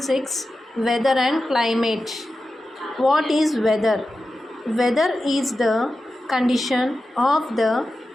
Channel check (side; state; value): both; normal; correlation 0.92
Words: Weather and Climate. What is weather? Weather is the condition of the